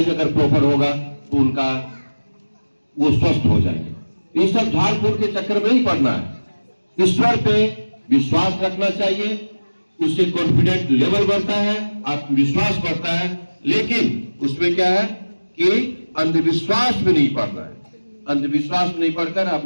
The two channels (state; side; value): inverted; both; correlation -1.00